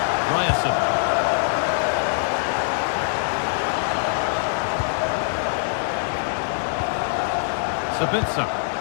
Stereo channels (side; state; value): right; silent; 63 dB below the other